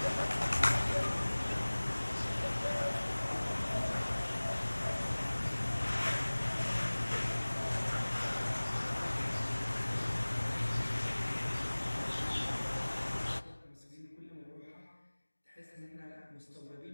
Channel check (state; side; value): inverted; both; correlation -1.00